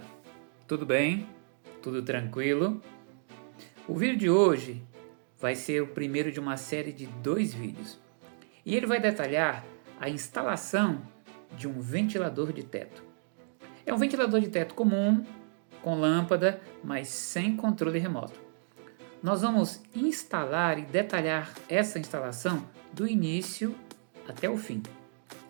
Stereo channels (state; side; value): silent; left; digital silence